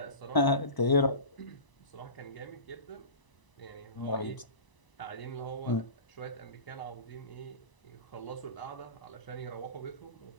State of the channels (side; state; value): right; late; 1.0 ms